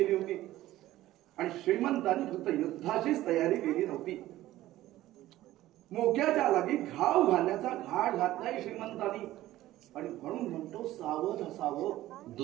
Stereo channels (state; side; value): quieter; left; 15.3 dB